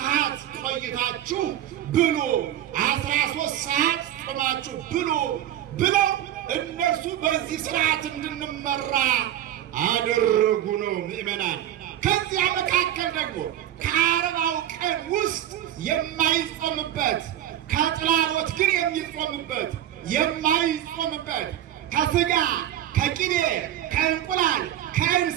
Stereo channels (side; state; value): left; quieter; 12.0 dB